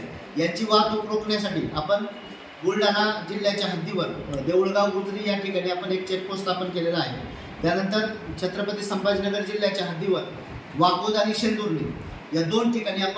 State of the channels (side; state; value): both; identical; correlation 1.00